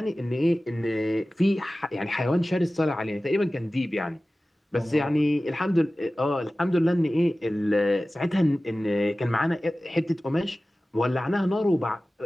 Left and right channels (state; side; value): normal; both; correlation 0.96